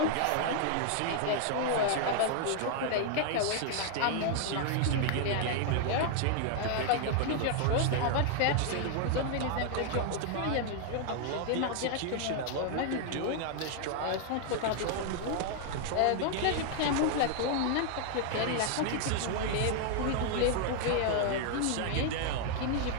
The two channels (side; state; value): both; different; correlation 0.00